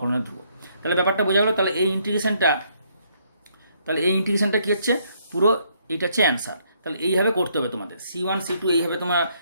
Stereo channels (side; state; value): both; inverted; correlation -0.70